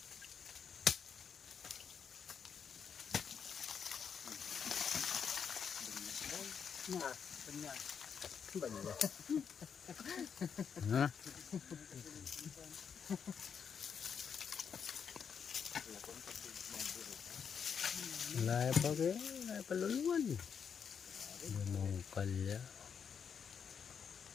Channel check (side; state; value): right; quieter; 7.0 dB